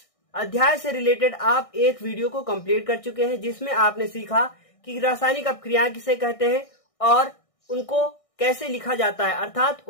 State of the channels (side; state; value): right; late; 1.6 ms